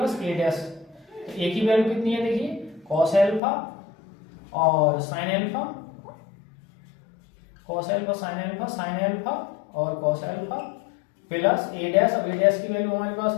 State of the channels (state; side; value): drops out; right; at 3.4 s